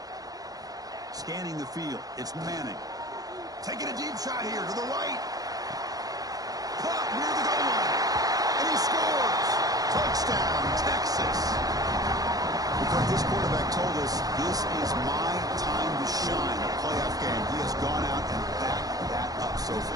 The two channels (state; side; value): late; left; 0.18 ms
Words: Scanning the field, it's Manning. Taking a deep shot here to the right. Caught near the goal line. And he scores! Touchdown, Texas! Because this quarterback told us this is my time to shine, a playoff game. He has gone out and backed that up so